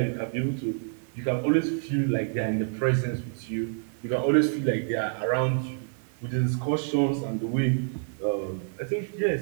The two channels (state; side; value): silent; left; 59 dB below the other